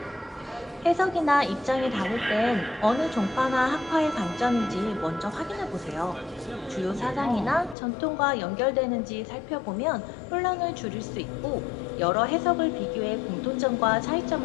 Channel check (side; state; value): right; drops out; at 7.8 s